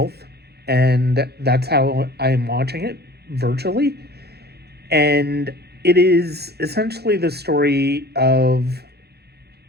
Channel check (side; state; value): left; late; 0.47 ms